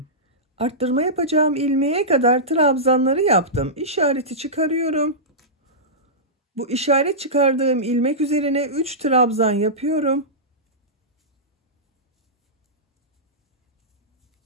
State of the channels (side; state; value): both; normal; correlation -0.16